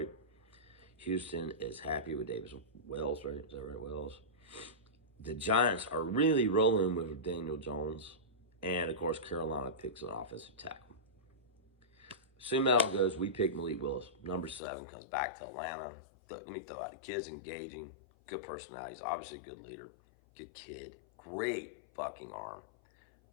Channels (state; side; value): drops out; right; at 14.6 s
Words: Houston is happy with Davis Wells, right? Is that right, Wells? The Giants are really rolling with Daniel Jones. And, of course, Carolina picks an offensive tackle. Assuming that all goes, we pick Malik Willis. Number 7 comes back to Atlanta. Let me throw out the kid's engaging, good personality. He's obviously a good leader, good kid, great fucking arm.